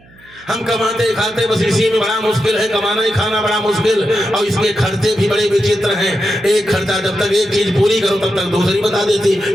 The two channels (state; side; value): noise; right; hum, 27 dB below the sound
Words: हम कमाते खाते बस इसी में बड़ा मुश्किल है, कमाना ही खाना बड़ा मुश्किल, और इसके खर्चे भी बड़े विचित्र हैं। एक खर्चा जब तक एक चीज पूरी करो तब तक दूसरी बता देती,